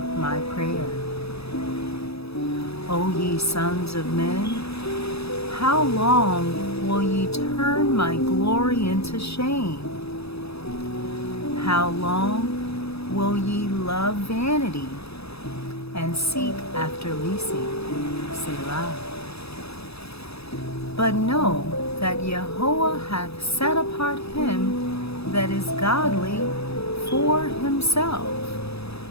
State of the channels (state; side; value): late; right; 0.78 ms